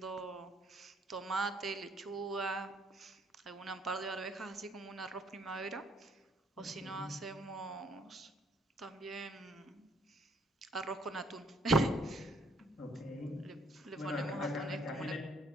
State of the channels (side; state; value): both; normal; correlation 0.66